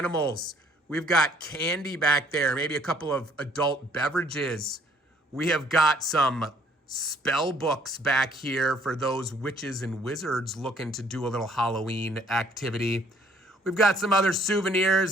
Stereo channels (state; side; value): normal; both; correlation 0.62